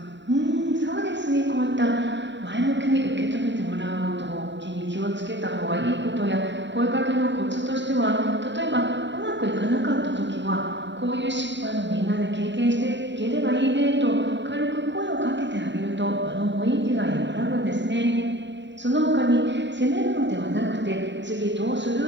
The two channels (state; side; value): late; left; 0.52 ms